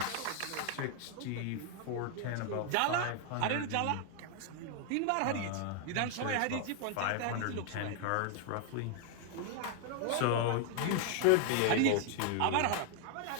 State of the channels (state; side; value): different; both; correlation 0.00